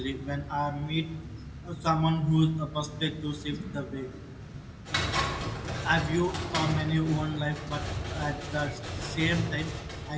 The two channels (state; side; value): identical; both; correlation 1.00